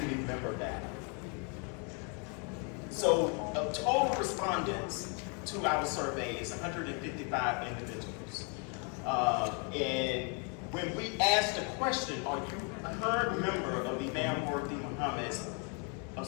member data. So total respondents to our survey is 155 individuals. And when we asked the question, are you a current member of Imam Worthy Muhammad's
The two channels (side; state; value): right; quieter; 37.0 dB